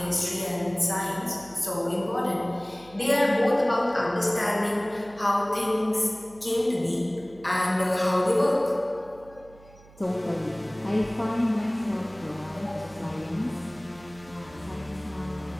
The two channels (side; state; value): right; noise; hum, 23 dB below the sound